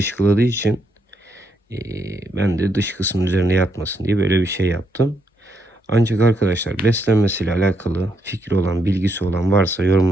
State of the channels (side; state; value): both; normal; correlation 0.77